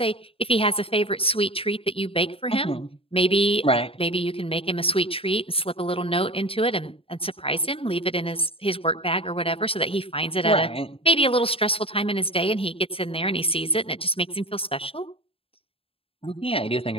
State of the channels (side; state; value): right; late; 0.27 ms